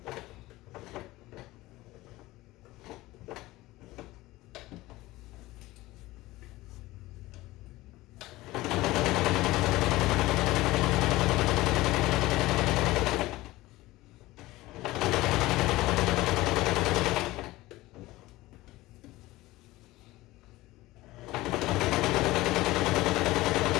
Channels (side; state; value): right; quieter; 18.5 dB